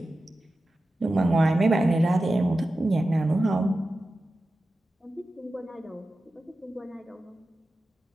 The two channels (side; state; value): both; normal; correlation 0.93